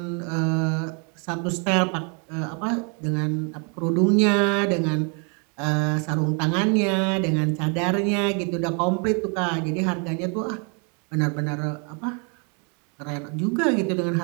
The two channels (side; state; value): left; quieter; 37.1 dB